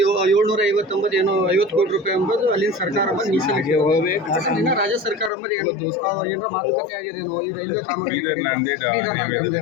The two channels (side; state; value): right; drops out; at 5.3 s